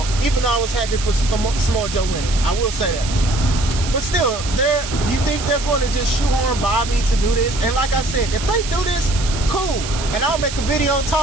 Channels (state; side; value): noise; right; hiss, 9 dB below the sound